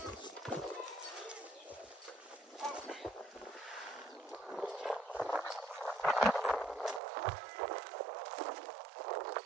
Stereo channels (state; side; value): drops out; left; at 7.0 s